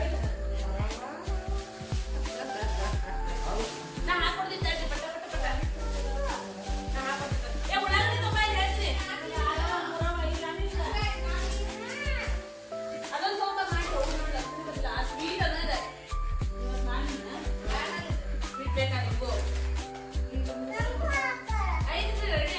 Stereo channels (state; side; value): identical; both; correlation 1.00